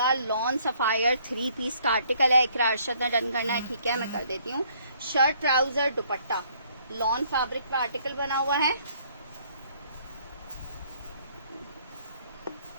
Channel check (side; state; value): both; inverted; correlation -0.64